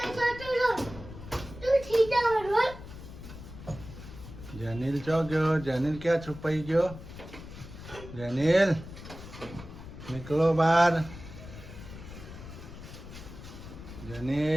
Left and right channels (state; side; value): noise; left; rumble, 14 dB below the sound